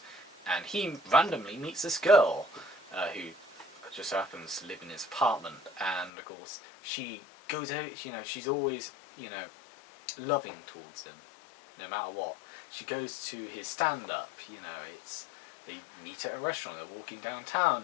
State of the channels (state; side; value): drops out; right; at 6.1 s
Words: and he randomly meets this girl who just happens to live in his apartment, and of course she goes out. She's always, loving towards him, no matter what. She goes to his stand-up. They meet at a restaurant. They're walking